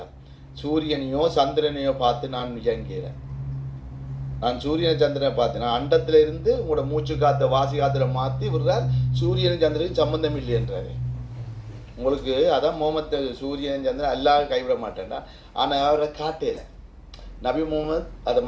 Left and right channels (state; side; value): identical; both; correlation 1.00